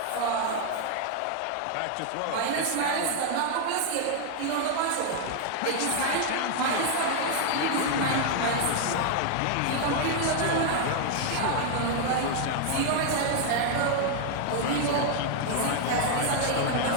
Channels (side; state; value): both; different; correlation 0.00